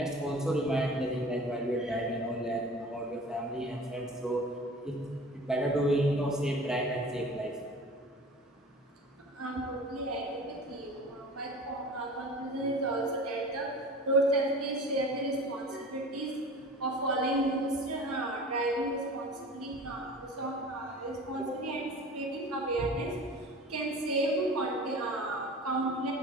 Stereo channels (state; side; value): normal; both; correlation 0.39